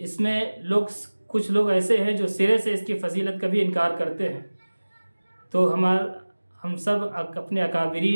میں کچھ لوگ ایسے ہیں جو سرے سے اس کی فضیلت کا بھی انکار کرتے ہیں۔ تو ہم سب اپنے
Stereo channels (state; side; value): inverted; both; correlation -1.00